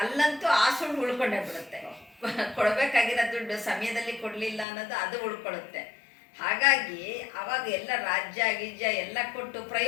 ಆ ಸುಳ್ಳು ಉಳ್ಕೊಂಡೇ ಬಿಡುತ್ತೆ. ಕೊಡಬೇಕಾಗಿರೋ ದುಡ್ಡು ಸಮಯದಲ್ಲಿ ಕೊಡಲಿಲ್ಲ ಅನ್ನೋದು ಅದು ಉಳ್ಕೊಳ್ಳುತ್ತೆ. ಹಾಗಾಗಿ ಅವಾಗ ಎಲ್ಲ ರಾಜ್ಯ ಗಿಜ್ಯ ಎಲ್ಲ ಕೊಟ್ಟು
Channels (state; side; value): drops out; right; at 4.7 s